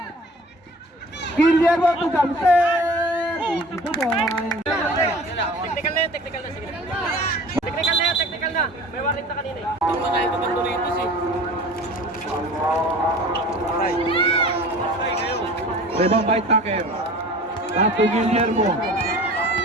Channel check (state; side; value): normal; both; correlation 0.43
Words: Guillermo to Thompson. Ito po. Technical na yan, technical na. Sige. Technical na yan, technical na. May warning na kanina eh. Ang mga iba bang Doritos eh. Rebound by Tucker. Tato Guillermo.